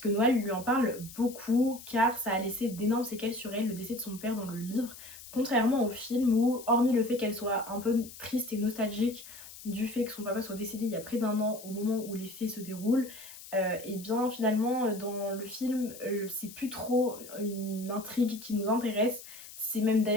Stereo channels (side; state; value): left; noise; hiss, 16 dB below the sound